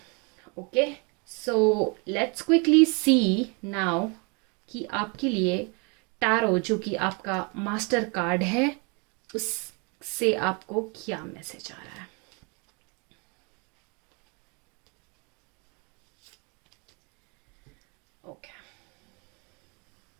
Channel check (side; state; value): left; quieter; 32.9 dB